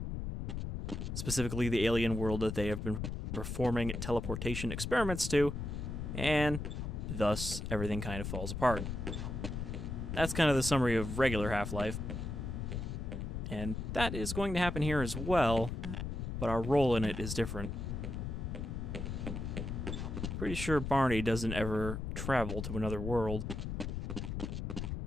Specifically, the alien world that they have been performing teleportation experiments to, and thus everything kind of falls apart. That's kind of the summary of regular Half-Life. And that is going to happen here as well, but our role in it is different. Pretty sure Barney doesn't ever travel to another world.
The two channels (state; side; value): noise; left; rumble, 4 dB below the sound